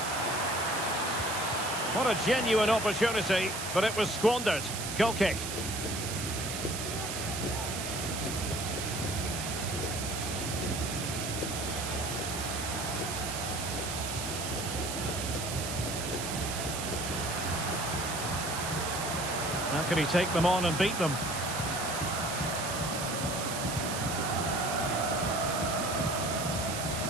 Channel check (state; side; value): noise; right; hiss, 5 dB below the sound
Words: What a genuine opportunity, but it was squandered. Goal kick. How can he take them on and beat them?